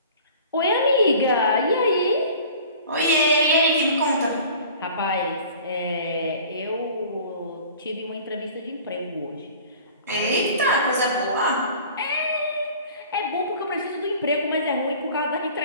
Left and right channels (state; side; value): inverted; both; correlation -0.45